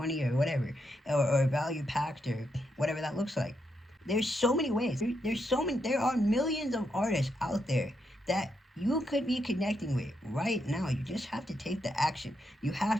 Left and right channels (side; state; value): both; normal; correlation 0.81